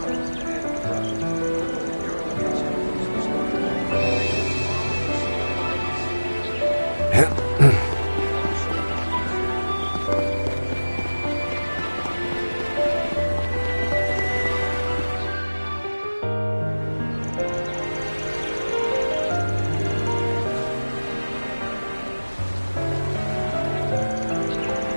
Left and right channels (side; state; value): both; inverted; correlation -1.00